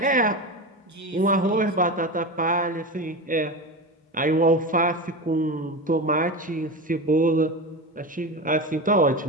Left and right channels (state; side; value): normal; both; correlation 0.23